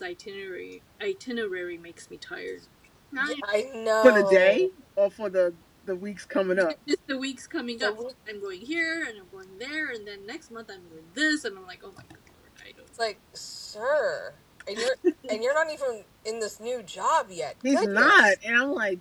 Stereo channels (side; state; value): both; identical; correlation 1.00